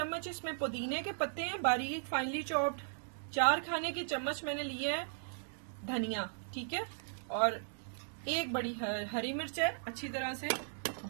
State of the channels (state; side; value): silent; left; digital silence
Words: इसमें पुदीने के पत्ते हैं बारीक फाइनली चॉप्ड। 4 खाने के चम्मच मैंने लिए है धनिया। ठीक है, और 1 बड़ी हरी मिर्च है, अच्छी तरह से